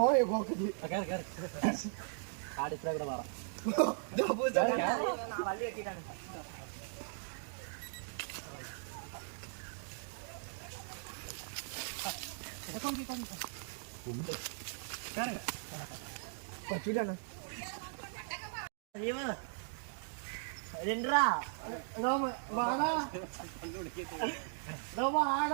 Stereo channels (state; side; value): silent; left; digital silence